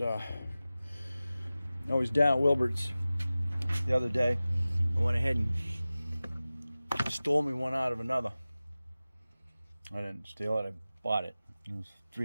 I was down at Wilbert's the other day. I went ahead and stole me one out of another. I didn't steal it, I bought it. It was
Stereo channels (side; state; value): both; inverted; correlation -0.97